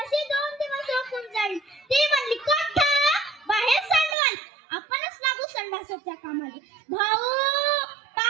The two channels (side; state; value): left; drops out; at 4.2 s